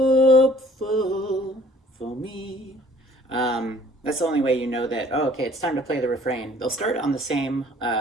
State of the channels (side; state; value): both; normal; correlation 0.55